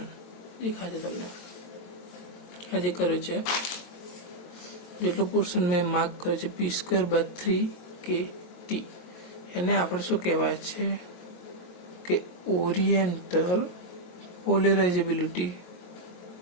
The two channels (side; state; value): right; late; 23 ms